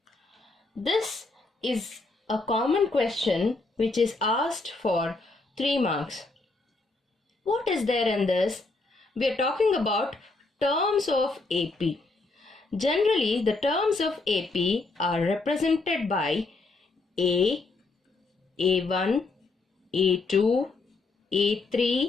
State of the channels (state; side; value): quieter; right; 3.5 dB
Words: This is a common question which is asked for 3 marks. What is there in this? We are talking about terms of AP. Generally the terms of AP are represented by A, A1, A2,